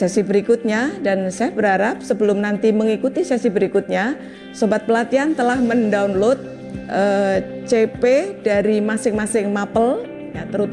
berikutnya, dan saya berharap sebelum nanti mengikuti sesi berikutnya, sobat pelatihan telah mendownload CP dari masing-masing mapel, ya,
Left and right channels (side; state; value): both; identical; correlation 1.00